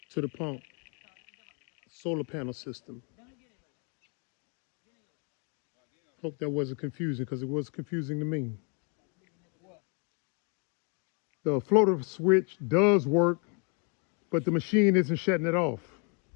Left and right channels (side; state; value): right; quieter; 36.0 dB